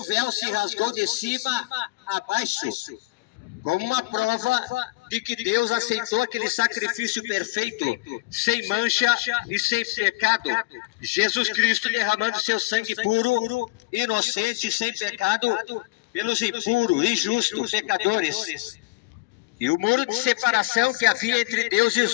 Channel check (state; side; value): quieter; right; 21.3 dB